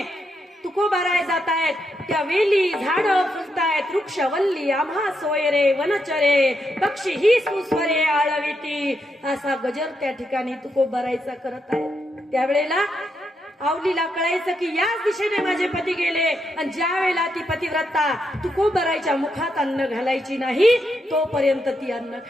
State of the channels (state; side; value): normal; both; correlation 0.81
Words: तुकोबाराय जात आहेत त्या वेली झाडं फुलतायत, वृक्ष वल्ली आम्हा सोयरे, वनचरे पक्षी ही सुस्वरे आळविती, असा गजर त्या ठिकाणी तुकोबारायचा करत आहे. त्यावेळेला आवलीला कळायचं की याच दिशेने माझे पती गेले, आणि ज्या वेळेला ती पतिव्रता तुकोबारायच्या मुखात अन्न घालायची नाही तोपर्यंत ती अन्न